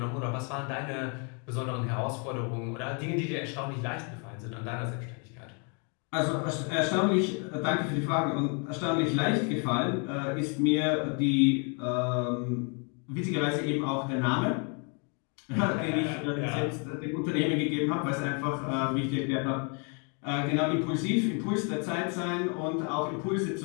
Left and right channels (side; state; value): right; quieter; 36.9 dB